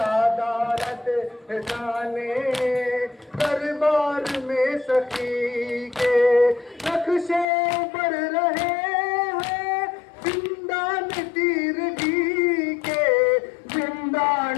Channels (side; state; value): right; drops out; at 7.5 s